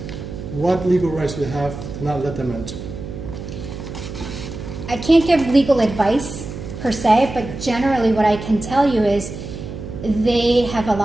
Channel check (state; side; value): noise; right; hum, 9 dB below the sound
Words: what legal rights do you have to not let them enter? I can't give legal advice per se, but generally what I can tell you is they have a